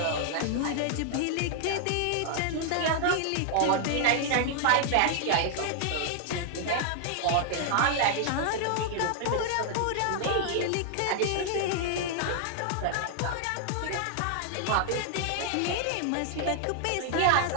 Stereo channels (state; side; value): different; both; correlation 0.00